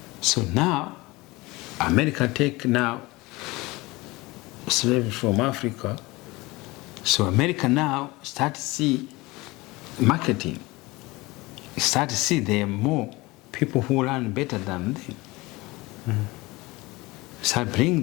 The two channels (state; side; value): quieter; right; 22.0 dB